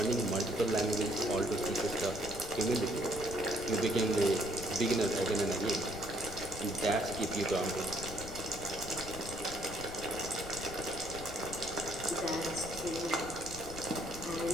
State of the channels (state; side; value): noise; left; rumble, 12 dB below the sound